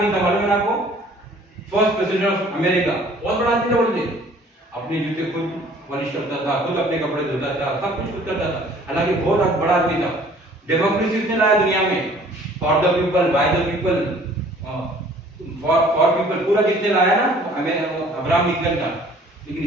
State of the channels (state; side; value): normal; both; correlation 0.54